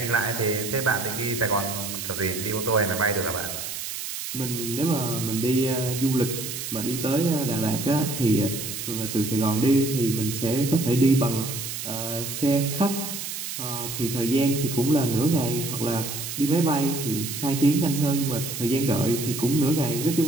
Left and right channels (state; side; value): noise; right; hiss, 6 dB below the sound